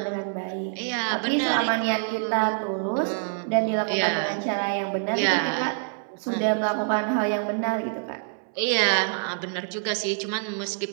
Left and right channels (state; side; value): silent; left; 61 dB below the other